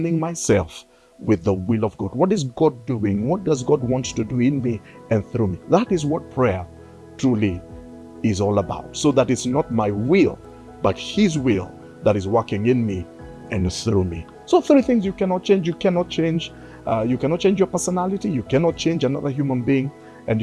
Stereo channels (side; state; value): both; identical; correlation 1.00